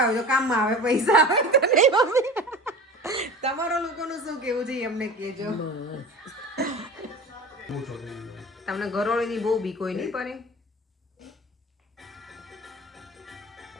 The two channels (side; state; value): both; normal; correlation 0.35